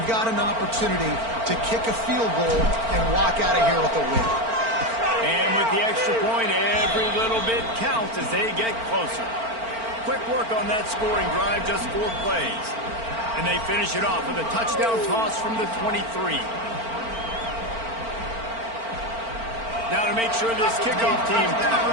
got an opportunity to kick a field goal and walk out of here with a win. And with the extra point, every little bit counts as they get closer. Quick work on that scoring drive, just 4 plays. And they finish it off with a touchdown toss from the 23. Now to make sure this kickoff team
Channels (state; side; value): late; left; 4.4 ms